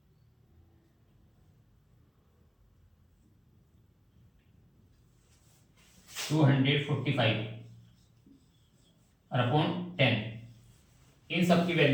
245 और अपॉन 10। इन सब की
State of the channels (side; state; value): both; identical; correlation 1.00